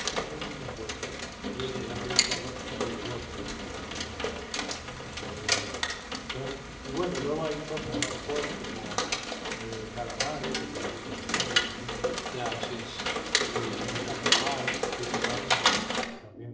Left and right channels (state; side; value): identical; both; correlation 1.00